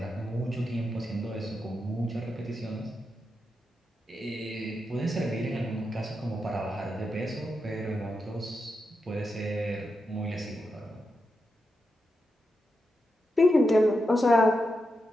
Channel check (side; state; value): both; normal; correlation 0.87